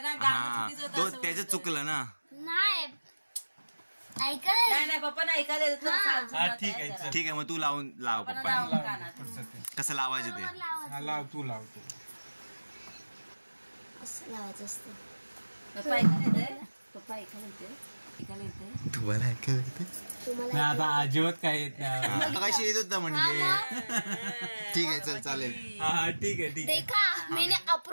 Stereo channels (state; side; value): inverted; both; correlation -1.00